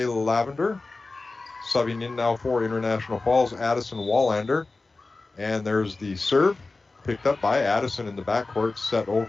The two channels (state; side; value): quieter; right; 3.5 dB